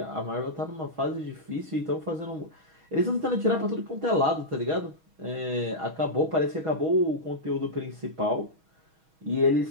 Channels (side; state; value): left; late; 6.3 ms